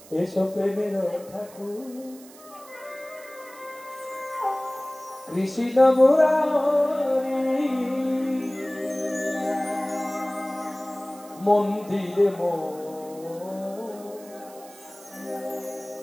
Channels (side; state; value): right; noise; hiss, 21 dB below the sound